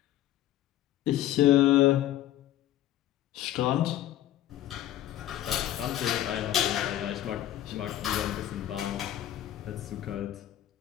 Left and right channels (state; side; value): quieter; right; 12.9 dB